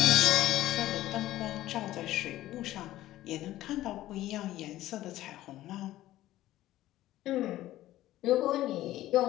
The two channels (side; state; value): right; quieter; 14.9 dB